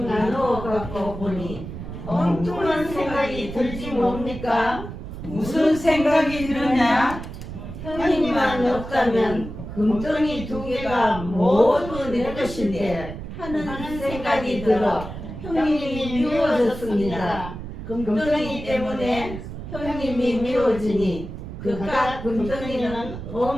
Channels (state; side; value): noise; right; rumble, 10 dB below the sound